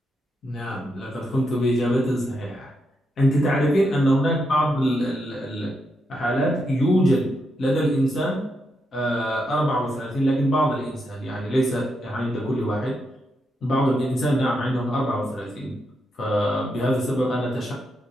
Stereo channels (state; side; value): normal; both; correlation 0.82